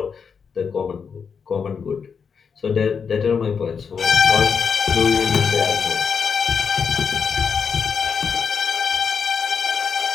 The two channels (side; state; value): right; quieter; 6.2 dB